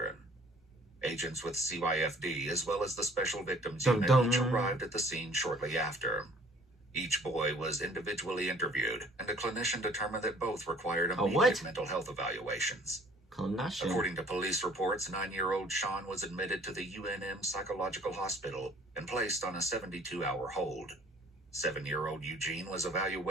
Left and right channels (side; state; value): both; normal; correlation 0.55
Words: Agents with CYFD, as well as the Special Victims Dum Unit, dum. each arrived at the scene shortly after. Each boy was individually interviewed, and a clinician determined that both required A immediate what? mental health evaluations. Clinician. According to police reports, 9-year-old Sean was admitted to the UNM Psychological Hospital and placed on a 72-hour hold. 7-year-old Eugene was